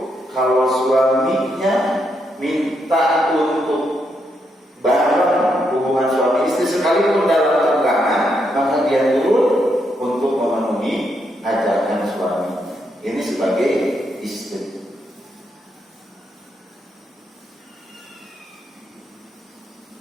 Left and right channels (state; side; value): normal; both; correlation 0.79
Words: kalau suaminya minta untuk bareng hubungan suami istri sekalipun dalam tenggangan, maka dia turun untuk memenuhi ajakan suami. Ini sebagai istri.